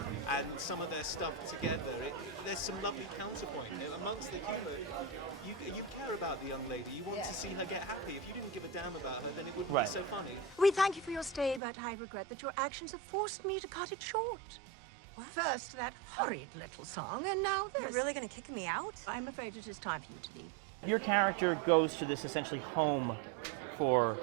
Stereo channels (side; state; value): left; drops out; at 11.6 s